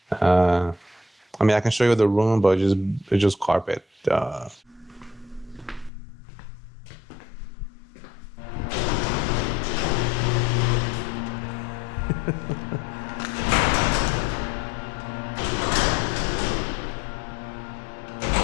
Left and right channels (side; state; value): right; drops out; at 5.9 s